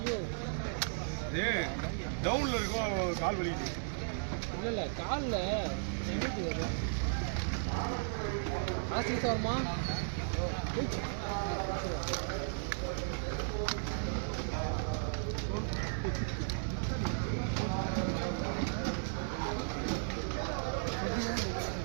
டவுன்ல இருக்கும் கால் வலி இல்லை காலில் எம்மிச்சு வரும் ஹாஸ்டல் சார்மா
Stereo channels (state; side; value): silent; left; 54 dB below the other